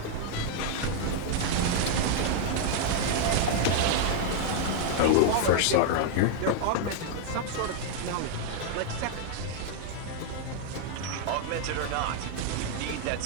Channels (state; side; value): different; both; correlation 0.00